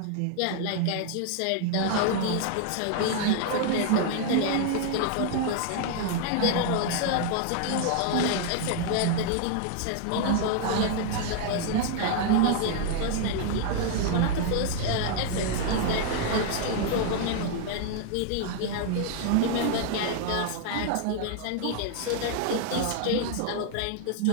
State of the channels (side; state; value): both; different; correlation 0.00